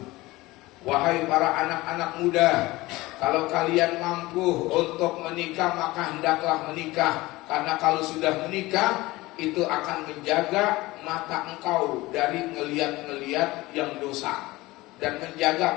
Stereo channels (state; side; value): quieter; right; 19.9 dB